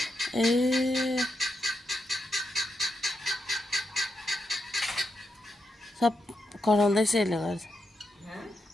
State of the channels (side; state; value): both; normal; correlation 0.84